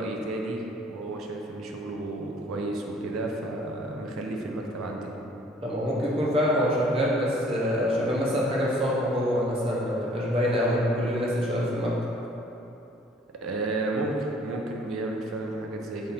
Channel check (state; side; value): normal; both; correlation 0.57